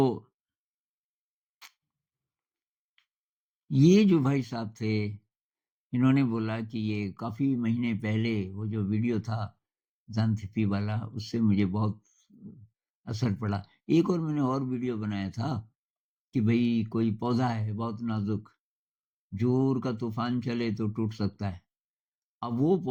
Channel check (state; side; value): identical; both; correlation 1.00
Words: ये जो भाई साहब थे, इन्होंने बोला कि ये काफ़ी महीने पहले वो जो वीडियो था ज़ांथपी वाला, उससे मुझे बहुत असर पड़ा। एक और मैंने और वीडियो बनाया था कि भई कोई पौधा है बहुत नाज़ुक, ज़ोर का तूफ़ान चले तो टूट सकता है। अब वो